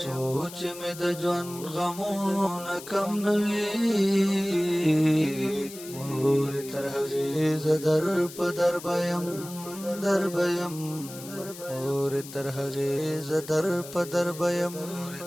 سوچ میں د جوان غمونه کم نوی مور تر حغیز در پدر بیم مور تر حغیز در پدر بیم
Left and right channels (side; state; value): left; noise; hiss, 14 dB below the sound